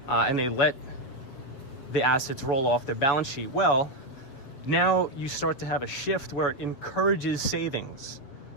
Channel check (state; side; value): late; right; 7.5 ms